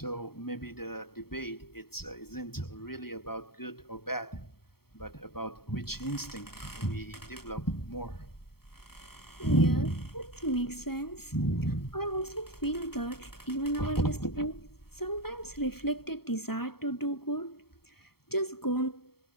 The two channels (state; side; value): late; right; 0.95 ms